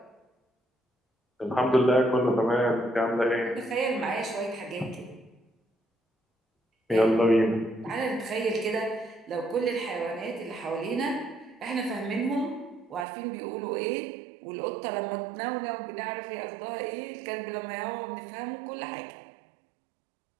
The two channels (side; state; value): left; drops out; at 13.1 s